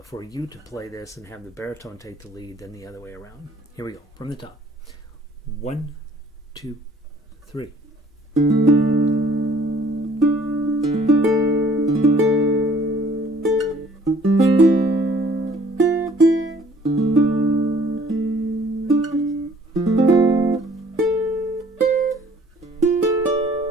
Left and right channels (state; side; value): normal; both; correlation 0.56